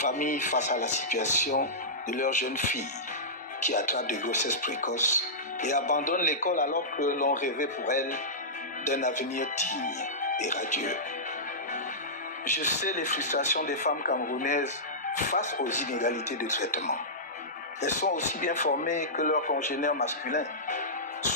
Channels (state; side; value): normal; both; correlation -0.15